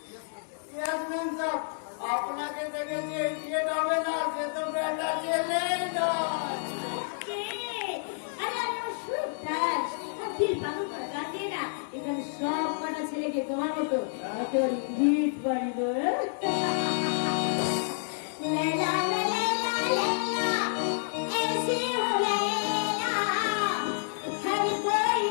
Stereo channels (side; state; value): right; silent; digital silence